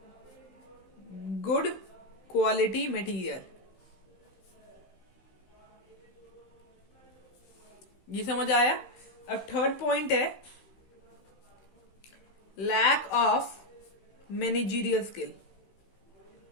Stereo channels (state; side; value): late; right; 15 ms